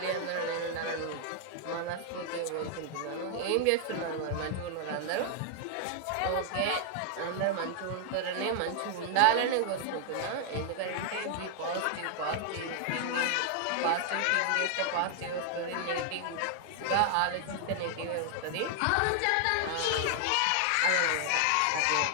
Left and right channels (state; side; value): different; both; correlation 0.00